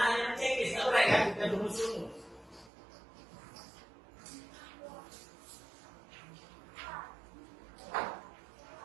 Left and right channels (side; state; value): left; drops out; at 2.7 s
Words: hanya mencekis, nggak boleh kan kita rumus-rumus.